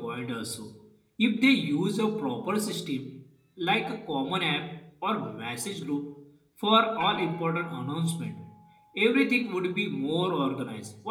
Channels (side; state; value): both; identical; correlation 1.00